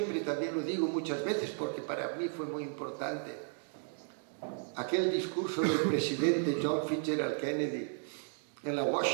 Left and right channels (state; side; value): silent; left; 55 dB below the other